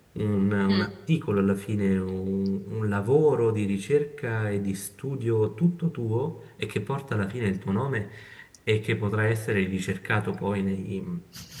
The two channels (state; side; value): identical; both; correlation 1.00